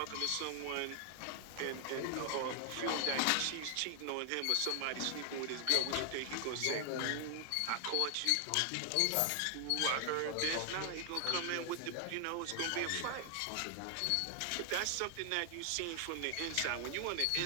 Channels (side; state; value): both; different; correlation 0.00